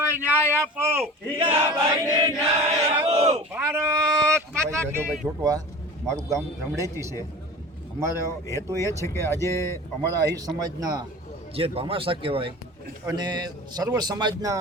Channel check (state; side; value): normal; both; correlation 0.36